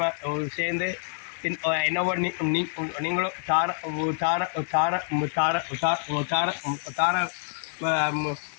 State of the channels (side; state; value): right; silent; 60 dB below the other